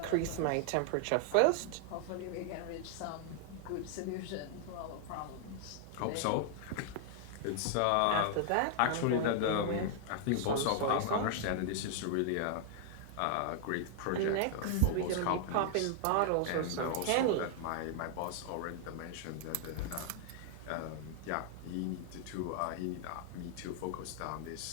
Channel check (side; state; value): both; different; correlation 0.00